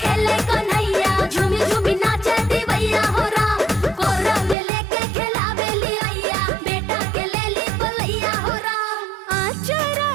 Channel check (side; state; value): left; drops out; at 4.5 s